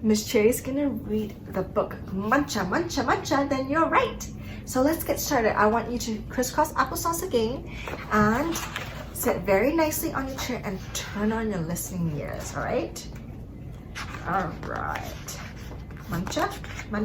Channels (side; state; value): both; identical; correlation 1.00